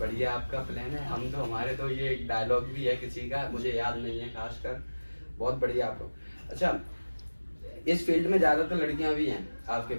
आपका प्लान है। हम तो हमारे तो ये एक डायलॉग भी है किसी का, मुझे याद नहीं है खासकर। बहुत बढ़िया आप लोग। अच्छा, इस फील्ड में ज्यादातर लड़कियां भी हैं आपके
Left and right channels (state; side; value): inverted; both; correlation -1.00